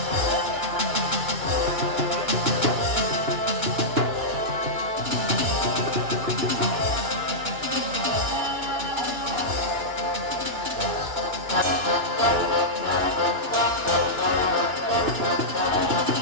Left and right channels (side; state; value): left; late; 2.9 ms